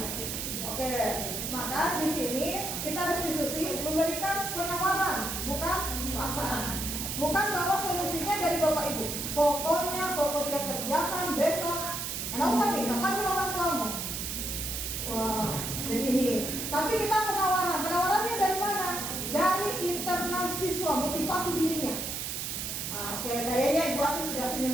Oke, Maka di sini kita restitusi memberikan penawaran, bukan paksaan. Bukan bahwa solusinya dari Bapak Ibu. Pokoknya pokok tidak kerjakan besok. Nggak usah nih, panggil orang tuamu. Wah, jadi ini. Tapi kita penawaran. Penawarannya dari mana? Dari internal siswa, motivasi dirinya. Nah, oke, kayaknya Ibu Ati sudah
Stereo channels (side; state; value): right; noise; hiss, 4 dB below the sound